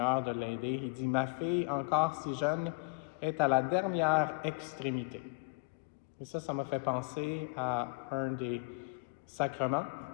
de l'aider. Il dit, « Ma fille, encore si jeune, est à la dernière extrémité. » Et ça m'a fait penser à un des sacrements,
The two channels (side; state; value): right; quieter; 31.0 dB